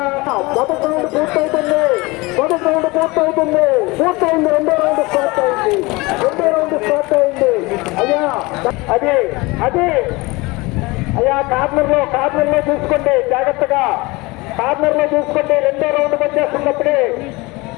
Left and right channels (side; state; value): right; quieter; 23.6 dB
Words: మొదటి రౌండ్ పూర్తవుతుంది. పూర్తయింది. రెండో రౌండ్ స్టార్ట్ అయింది. అయ్యా అదే అయ్యా కార్నర్లో చూసుకోండి, జాగ్రత్తగా కార్నర్లో చూసుకోండి. రెండో రౌండ్ వచ్చేస్తున్నప్పుడే